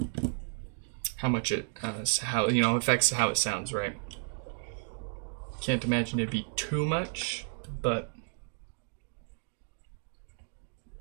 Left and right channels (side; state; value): left; silent; 56 dB below the other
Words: how much it how affects how it sounds, right? Can't imagine it'd be too much, but